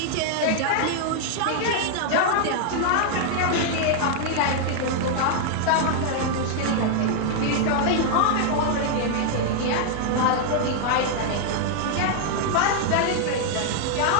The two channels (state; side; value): different; both; correlation 0.00